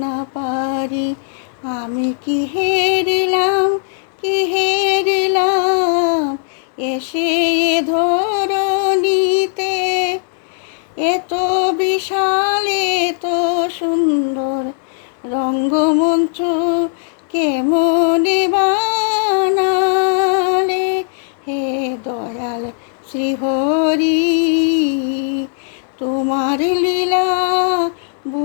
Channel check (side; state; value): right; silent; digital silence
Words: না পারি। আমি কি হেরিলাম, কি হেরিলাম, এসে এ ধরণীতে। এত বিশাল এত সুন্দর রঙ্গমঞ্চ কেমনে বানালে। হে দয়াল শ্রীহরি, তোমার লীলা